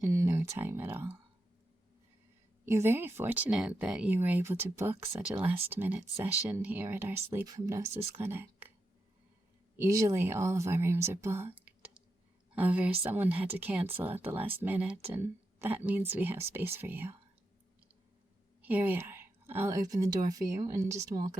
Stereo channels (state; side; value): normal; both; correlation 0.86